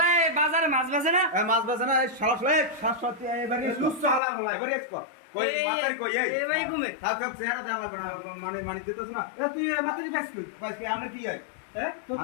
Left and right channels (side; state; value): right; drops out; at 4.2 s